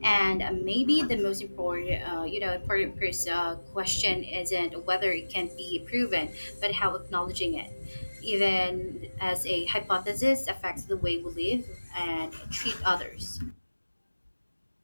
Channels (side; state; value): both; inverted; correlation -1.00